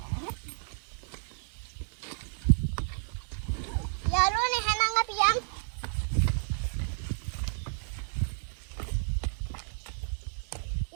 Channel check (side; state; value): left; silent; digital silence